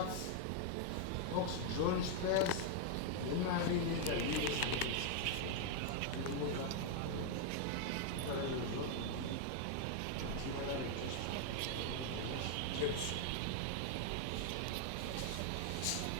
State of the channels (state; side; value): different; both; correlation 0.00